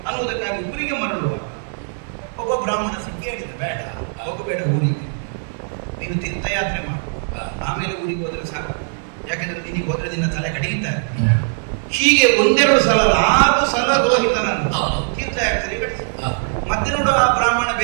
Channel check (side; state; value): left; silent; digital silence